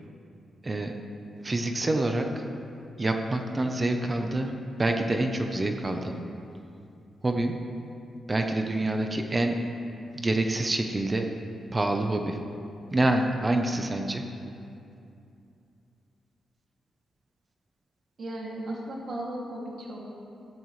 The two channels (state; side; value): normal; both; correlation 0.92